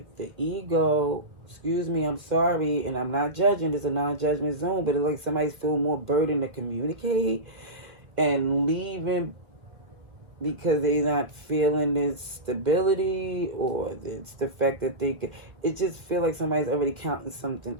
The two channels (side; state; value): left; late; 2.1 ms